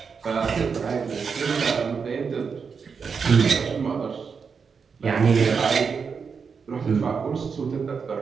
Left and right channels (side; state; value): left; quieter; 5.8 dB